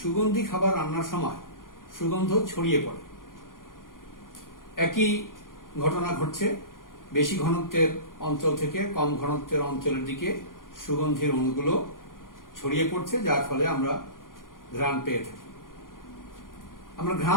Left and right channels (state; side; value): late; right; 0.90 ms